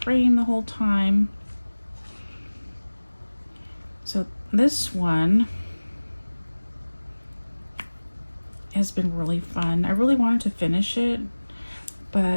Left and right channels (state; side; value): inverted; both; correlation -1.00